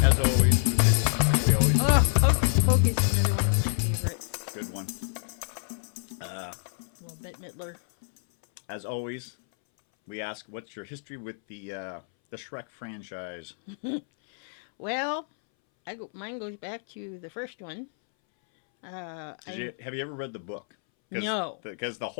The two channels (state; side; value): silent; right; 59 dB below the other